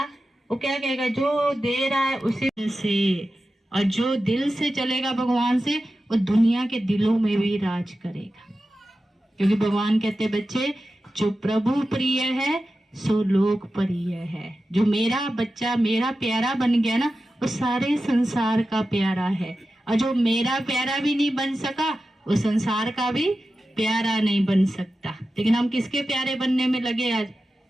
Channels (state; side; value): normal; both; correlation 0.93